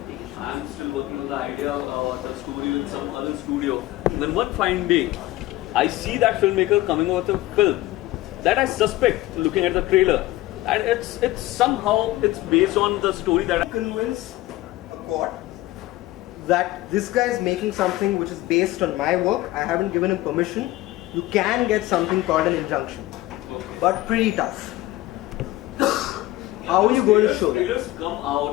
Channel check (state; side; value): quieter; right; 17.3 dB